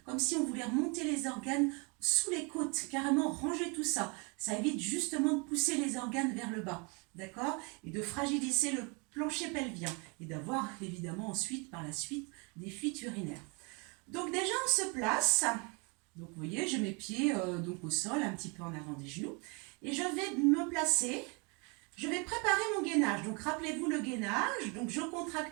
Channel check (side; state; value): left; quieter; 32.0 dB